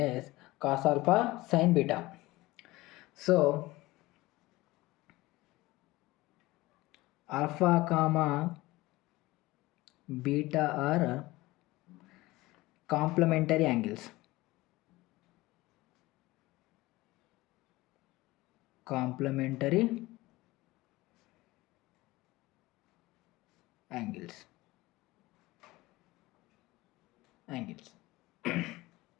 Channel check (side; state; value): right; quieter; 19.7 dB